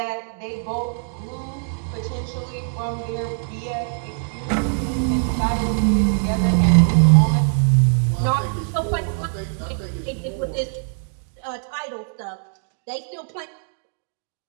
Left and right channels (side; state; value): left; silent; digital silence